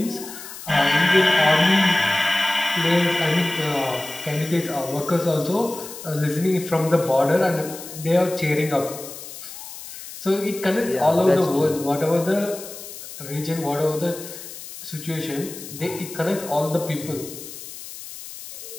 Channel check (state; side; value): noise; left; hiss, 13 dB below the sound